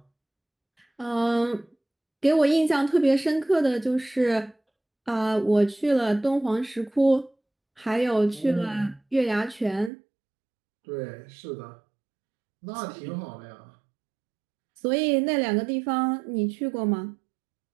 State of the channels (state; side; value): drops out; left; at 9.9 s